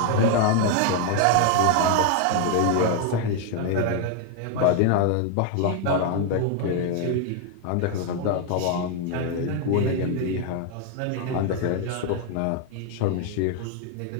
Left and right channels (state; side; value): different; both; correlation 0.00